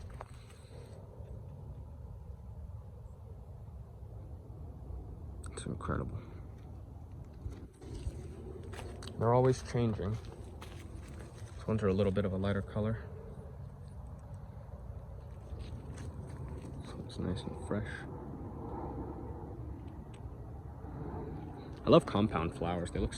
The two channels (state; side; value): identical; both; correlation 1.00